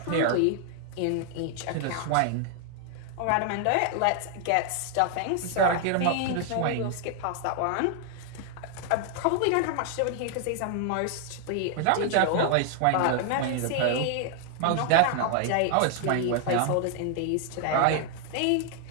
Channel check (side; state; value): both; different; correlation 0.00